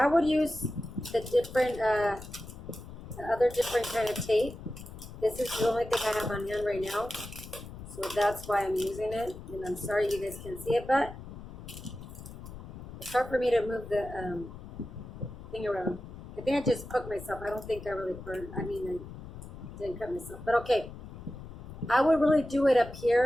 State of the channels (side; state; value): left; noise; rumble, 13 dB below the sound